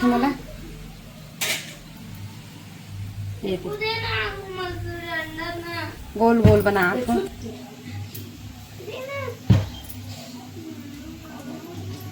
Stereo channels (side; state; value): both; identical; correlation 1.00